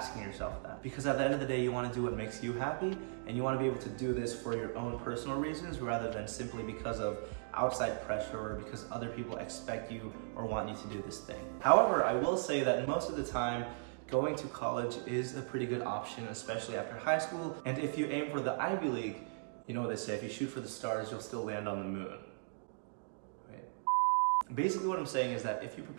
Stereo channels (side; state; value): left; silent; digital silence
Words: yourself that. Because at the end of the day, you want to do what makes you happy, and you want to be able to do this for your own personal reasons rather than simply because of outside pressure or because other people expect you or want you to do this thing. However, I will say that most of the time, going to college is a pretty good option, especially after high school. And if you aim for the Ivy League, you know what they say, if you shoot for the stars, you'll still land on the moon. Basically what I'm saying is that if you